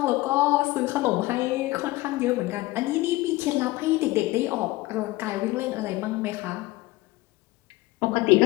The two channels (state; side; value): quieter; right; 19.4 dB